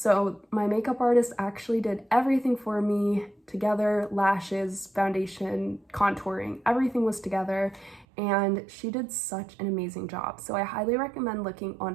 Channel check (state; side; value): drops out; left; at 8.1 s